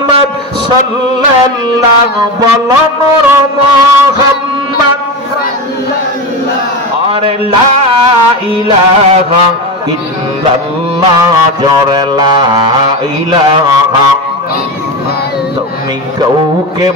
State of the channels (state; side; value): normal; both; correlation 0.20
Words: সাল্লাল্লাহু, বলো নূর মুহাম্মদ সাল্লাল্লাহু। আরে লা ইলাহা ইল্লাল্লাহ, জোরে লা ইলাহা। তুমি কাউকে